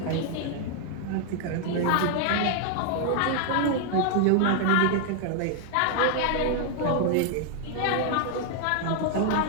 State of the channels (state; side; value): different; both; correlation 0.00